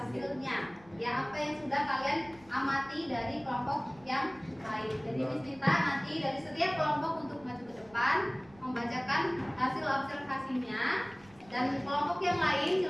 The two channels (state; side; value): noise; right; rumble, 25 dB below the sound